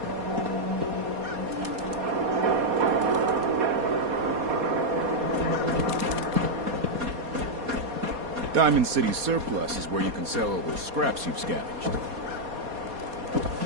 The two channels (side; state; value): left; late; 4.2 ms